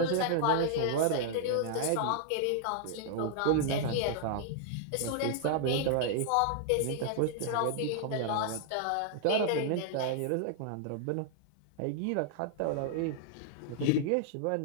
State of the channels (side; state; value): both; different; correlation -0.01